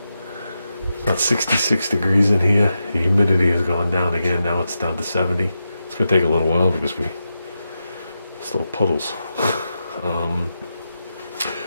about 66 degrees in here. The humidity has gone down again. Now it's down to 70. It's gonna take a little while because we still have puddles.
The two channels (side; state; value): both; inverted; correlation -0.88